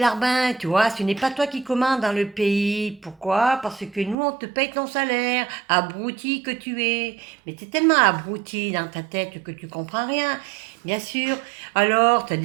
tu vois. Ce n'est pas toi qui commandes dans le pays. Pourquoi? Parce que nous, on te paye ton salaire, abruti que tu es. Mais tu es tellement abruti dans ta tête que tu comprends rien. Bien sûr. Alors, tu as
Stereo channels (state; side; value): drops out; left; at 4.2 s